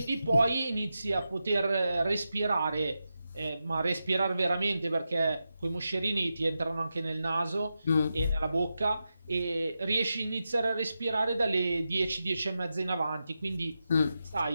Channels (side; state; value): both; inverted; correlation -0.89